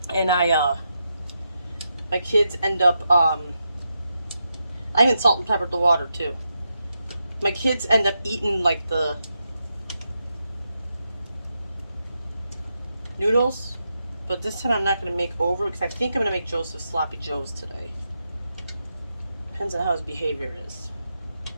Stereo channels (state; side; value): inverted; both; correlation -0.85